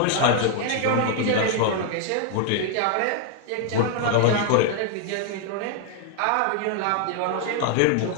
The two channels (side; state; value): both; different; correlation 0.00